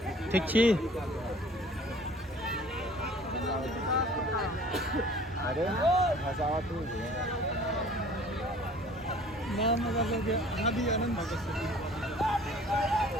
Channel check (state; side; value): normal; both; correlation 0.50